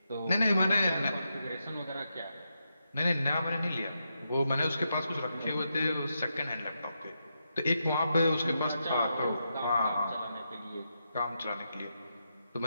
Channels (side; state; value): both; inverted; correlation -0.84